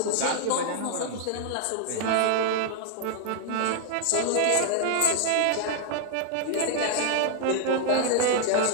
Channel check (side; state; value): both; different; correlation 0.00